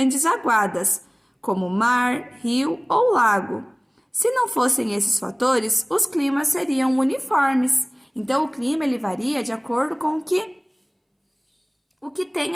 aguadas, como mar, rio ou lago. Se não fossem esses fatores, os climas seriam uniformes. Então, o clima ele varia de acordo com o que tem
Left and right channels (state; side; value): identical; both; correlation 1.00